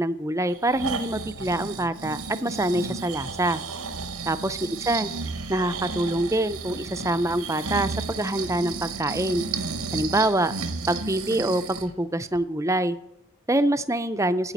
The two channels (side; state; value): both; normal; correlation 0.64